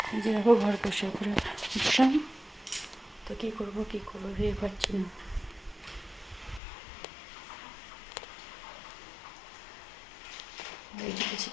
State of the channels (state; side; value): drops out; right; at 6.6 s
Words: যে দেখো ঘর পরিষ্কার করে উঠলাম। তো কী করবো ভেবে পাচ্ছি না।